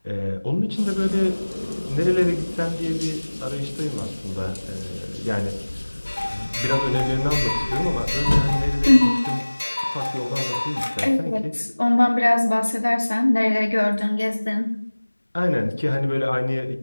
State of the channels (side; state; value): both; inverted; correlation -1.00